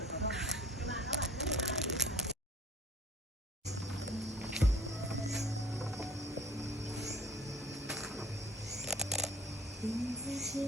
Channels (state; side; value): normal; both; correlation 0.50